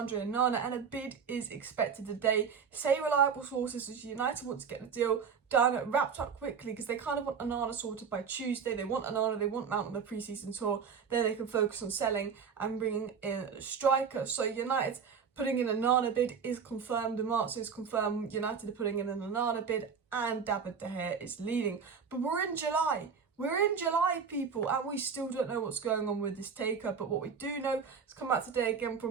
and a bid is expected today. Say reliable sources as United want to get the deal done, wrapped up quickly, because they kind of want Onana sorted by Tuesday. They want Onana, they want Mount on the pre-season tour, then they can focus on selling and bringing in a striker. So United putting in an Onana bid is confirmed. Marzio is confirmed. United are putting in an Onana bid, and David De Gea is leading. But we're in July. We're in July, people, and we still don't know what's going on with this takeover. But what we do know has come out today again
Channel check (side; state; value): left; quieter; 6.3 dB